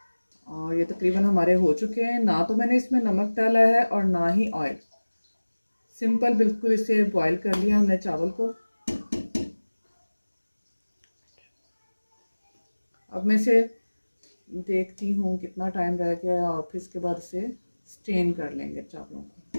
और ये तकरीबन हमारे हो चुके हैं। ना तो मैंने इसमें नमक डाला है और ना ही ऑयल, सिंपल बिल्कुल इसे बॉयल कर लिया हमने चावल को। अब मैं इसे देखती हूँ कितना टाइम रह गया और फिर इसके बाद इसे स्टेन कर लेंगे चावलों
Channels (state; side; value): inverted; both; correlation -1.00